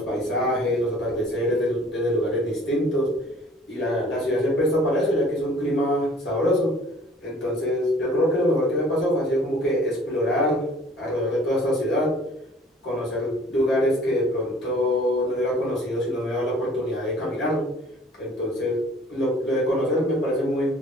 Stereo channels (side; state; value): both; normal; correlation 0.52